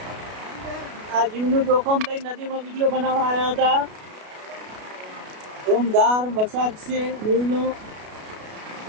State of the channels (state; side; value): late; left; 33 ms